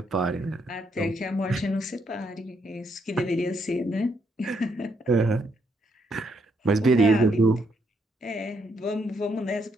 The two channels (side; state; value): both; normal; correlation 0.75